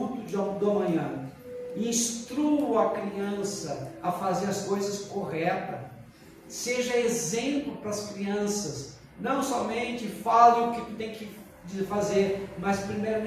do amanhã. Instrua a criança a fazer as coisas corretas. Seja exemplo para as crianças. Não somente fale o que tu tem que fazer, mas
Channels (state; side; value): identical; both; correlation 1.00